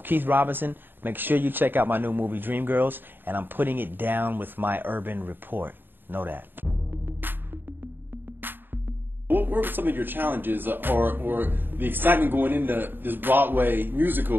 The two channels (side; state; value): left; late; 0.095 ms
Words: Keith Robinson. Make sure you check out my new movie, Dreamgirls, and I'm putting it down with my urban report. Know that. What were some of your challenges or the excitement going into this Broadway